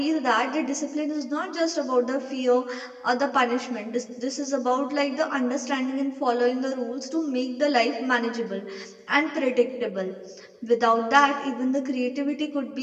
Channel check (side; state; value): both; identical; correlation 1.00